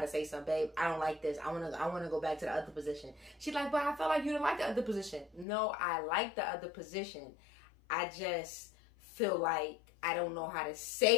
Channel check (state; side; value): drops out; right; at 5.5 s